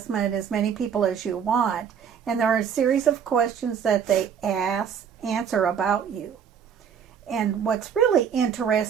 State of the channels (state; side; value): quieter; left; 7.7 dB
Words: as many people as you want, and there are a series of questions that they answer about you. And what's really